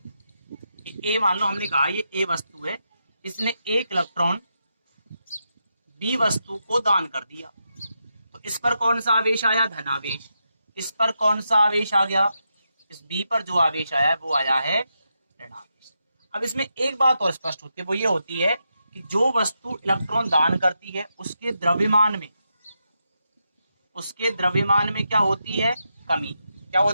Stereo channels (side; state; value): both; inverted; correlation -0.85